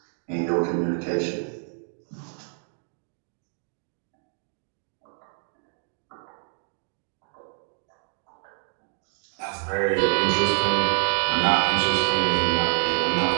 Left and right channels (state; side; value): silent; left; 60 dB below the other